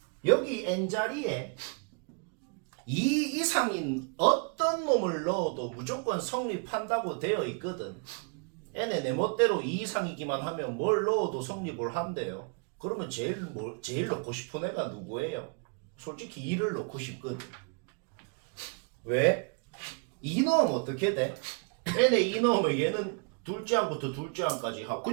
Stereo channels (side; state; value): left; quieter; 37.7 dB